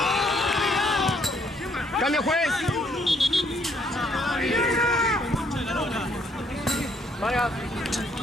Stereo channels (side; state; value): both; normal; correlation 0.67